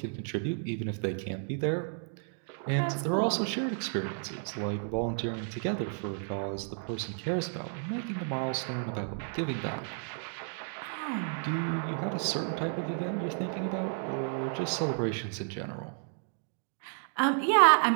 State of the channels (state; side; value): silent; left; 56 dB below the other